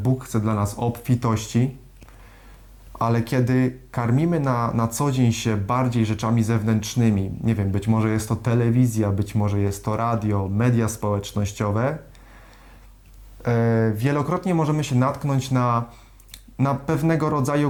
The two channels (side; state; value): both; identical; correlation 1.00